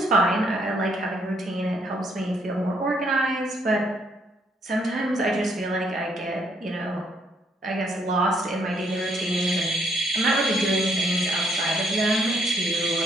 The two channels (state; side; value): normal; both; correlation 0.70